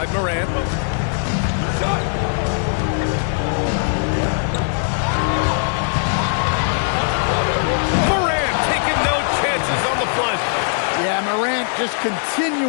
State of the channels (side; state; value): right; silent; digital silence